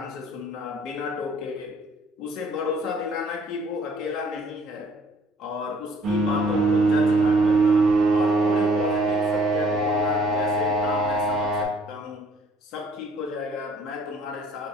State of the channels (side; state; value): both; normal; correlation 0.59